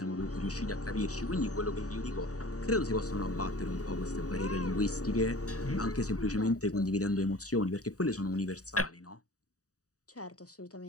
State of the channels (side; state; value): right; late; 0.66 ms